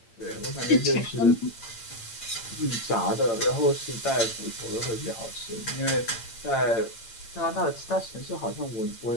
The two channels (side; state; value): right; late; 8.8 ms